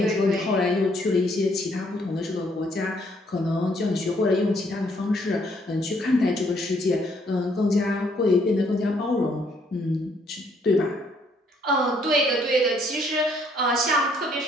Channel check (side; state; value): both; normal; correlation 0.67